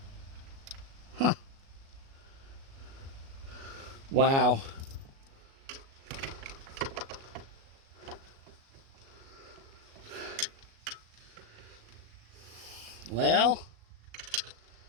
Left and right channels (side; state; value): left; late; 37 ms